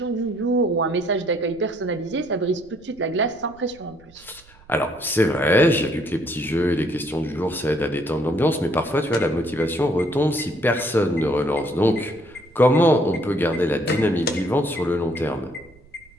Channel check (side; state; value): right; noise; rumble, 26 dB below the sound